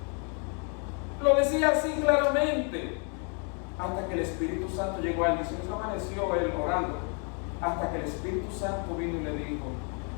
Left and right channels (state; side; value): quieter; right; 38.9 dB